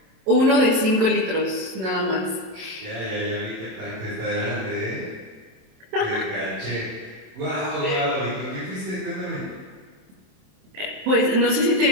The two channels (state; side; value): late; left; 27 ms